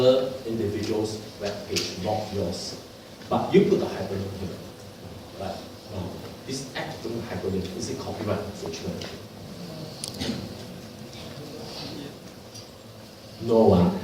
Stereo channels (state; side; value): identical; both; correlation 1.00